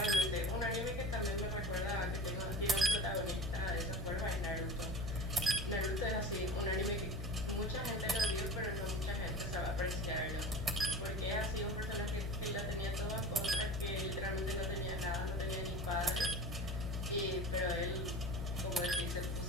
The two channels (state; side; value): noise; left; hum, 3 dB below the sound